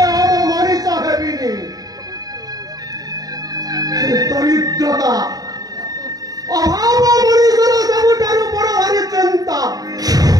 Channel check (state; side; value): late; left; 0.18 ms